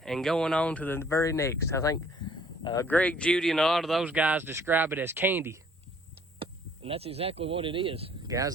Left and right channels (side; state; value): both; normal; correlation 0.58